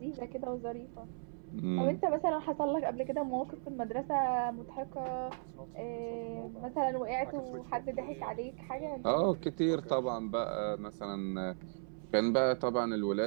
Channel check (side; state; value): left; silent; 54 dB below the other